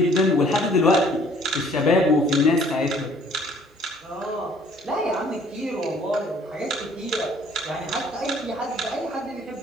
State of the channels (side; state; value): both; normal; correlation 0.58